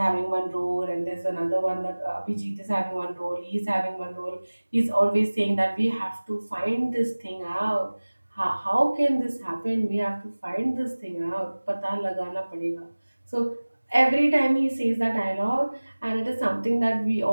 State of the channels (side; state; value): both; inverted; correlation -1.00